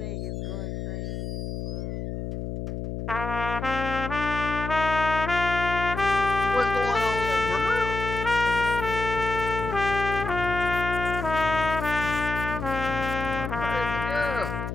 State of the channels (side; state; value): left; noise; hum, 5 dB below the sound